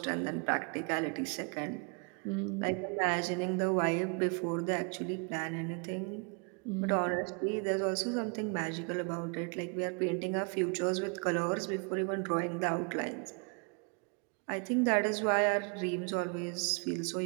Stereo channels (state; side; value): quieter; left; 36.8 dB